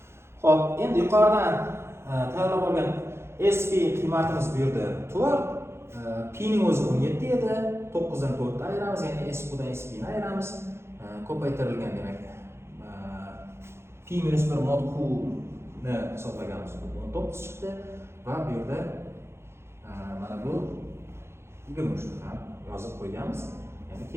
Xo'p, endi yuqoridan tayyorlab olgan SP qiymatimiz bu yerda 4, P ning o'zi 17 edi. 9 dan 4 ni ayiramiz, ya'ni SQ dan SP ni ayiramiz. Ko'paytirilgan, demak, P minus 1 mod Q ni hisoblaganmiz. 19 chiqdi va bu yerda mana bu 23 ni ham yozib qo'yganmiz. Ya'ni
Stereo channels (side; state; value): left; late; 0.12 ms